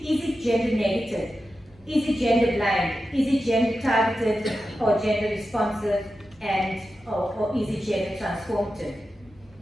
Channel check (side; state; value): both; normal; correlation 0.91